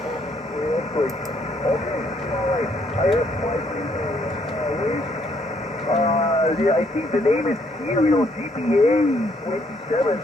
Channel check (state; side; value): normal; both; correlation 0.69